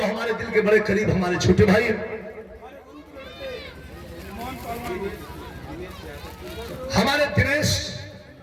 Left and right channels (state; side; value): identical; both; correlation 1.00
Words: हमारे दिल के बड़े करीब हमारे छोटे भाई हैं हमारे